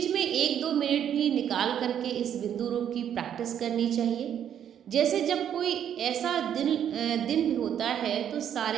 में 1-2 मिनट भी निकाल करके इस बिंदु रूप की प्रैक्टिस करनी चाहिए। जैसे जब कोई ऐसा दिन होता है तो सारे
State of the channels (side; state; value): left; quieter; 9.5 dB